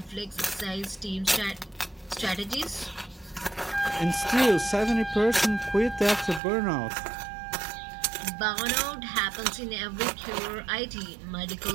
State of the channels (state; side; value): drops out; left; at 6.4 s